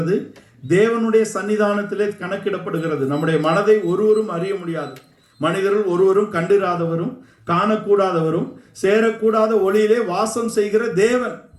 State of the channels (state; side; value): identical; both; correlation 1.00